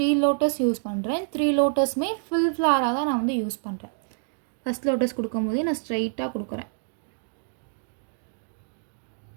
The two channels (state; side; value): silent; left; digital silence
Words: லோட்டஸ் யூஸ் பண்ணுறேன். 3 லோட்டஸுமே ஃபுல் ஃப்ளாராக தான் நான் வந்து யூஸ் பண்ணுறேன். ஃபஸ்ட் லோட்டஸ் கொடுக்கும்போதே நான் ஸ்ட்ரைட்டாக கொடுக்குறேன்.